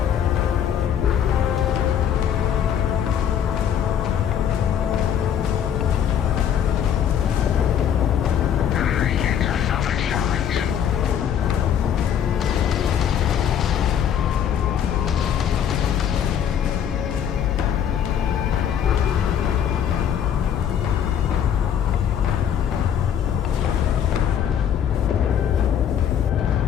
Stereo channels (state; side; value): quieter; right; 9.0 dB